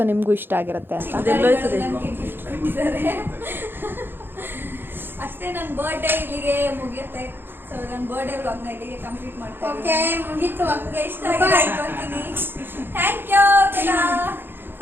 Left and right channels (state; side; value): late; left; 0.10 ms